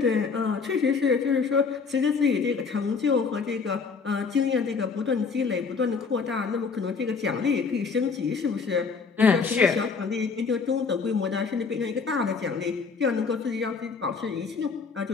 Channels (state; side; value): quieter; right; 5.1 dB